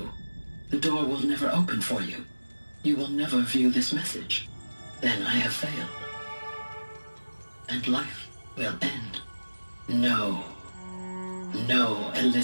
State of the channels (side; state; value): both; inverted; correlation -1.00